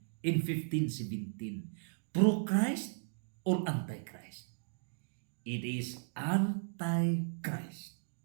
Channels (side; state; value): left; silent; digital silence